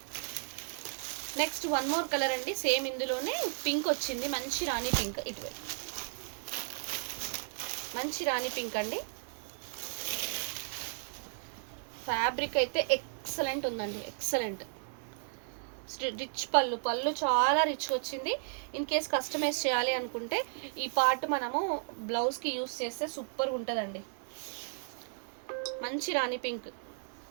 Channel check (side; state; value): left; silent; digital silence